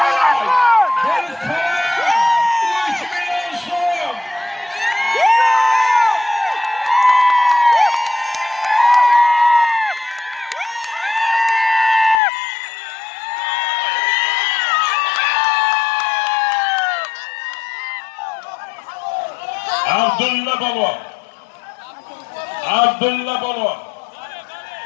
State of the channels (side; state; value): right; drops out; at 12.2 s